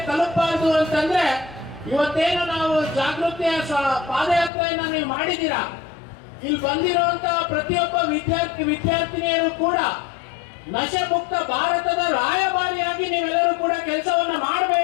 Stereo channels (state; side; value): drops out; right; at 4.5 s